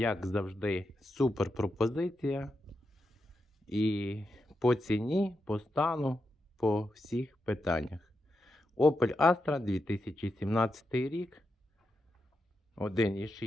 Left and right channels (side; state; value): both; normal; correlation 0.86